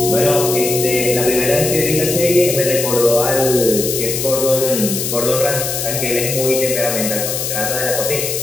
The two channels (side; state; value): left; noise; hiss, 3 dB below the sound